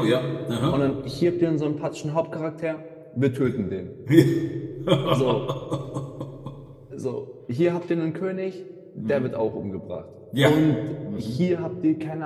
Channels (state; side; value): identical; both; correlation 1.00